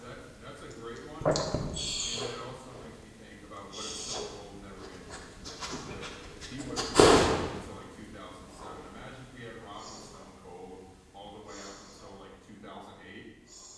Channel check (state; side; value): identical; both; correlation 1.00